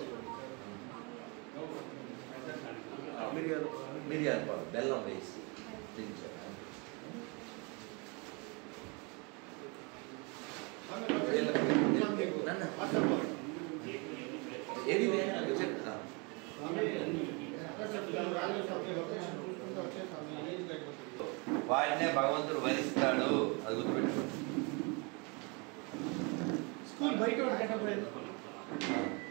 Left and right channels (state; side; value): quieter; left; 31.1 dB